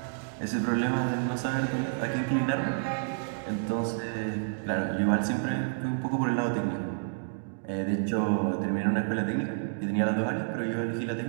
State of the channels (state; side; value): silent; left; digital silence